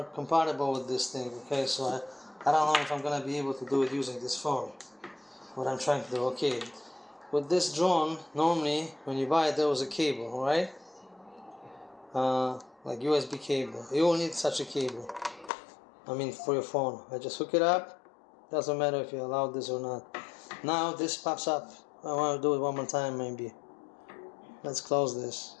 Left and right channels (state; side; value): drops out; right; at 15.5 s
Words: compatible with this thing, okay? So I don't know if I'm gonna be able to do it using this phone. What I'm trying to do, okay. With this drone, normally when you buy it, there was a cable, alright? Like USB cable. You will need such a cable. I mean, for your phone. I just hook it up. Doesn't matter if you allow this or not. Now this pops up. I want to do it one more time, maybe. Let's close this.